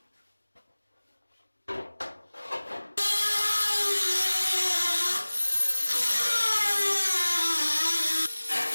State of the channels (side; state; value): both; inverted; correlation -1.00